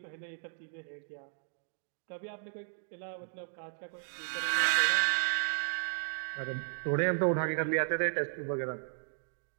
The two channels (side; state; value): left; silent; digital silence